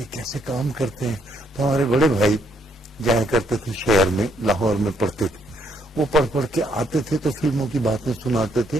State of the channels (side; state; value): both; normal; correlation 0.71